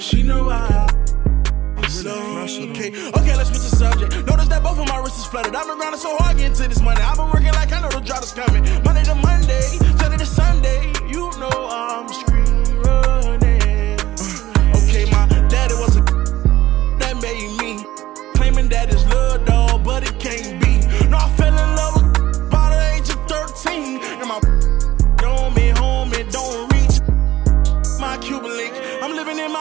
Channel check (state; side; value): quieter; left; 15.1 dB